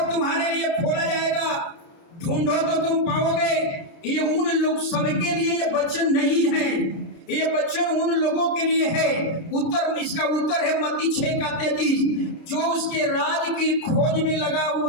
तुम्हारे लिए खोला जाएगा, ढूंढो तो तुम पाओगे। ये उन लोग सबके लिए ये वचन नहीं है, ये वचन उन लोगों के लिए है। उत्तर, इसका उत्तर है मत्ती 6:33। जो उसके राज की खोज में लगा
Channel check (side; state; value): right; late; 29 ms